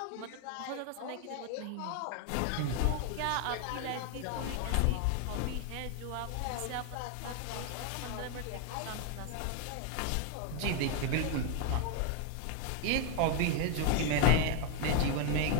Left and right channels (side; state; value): both; different; correlation 0.00